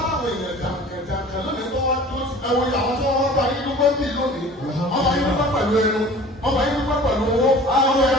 láwọn èèyàn jàǹkànjàǹkàn lónìí tó wá tó ẹwọ àwọn tó wọ́n bá yín dúpẹ́ bí lónìí wọ́n bá yín dúpẹ́ pẹ̀lú ẹnu wọ́n bá yín dúpẹ́ pẹ̀lú owó wọ́n bá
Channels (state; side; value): normal; both; correlation 0.44